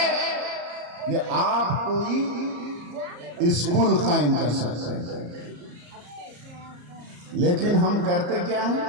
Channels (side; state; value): left; late; 34 ms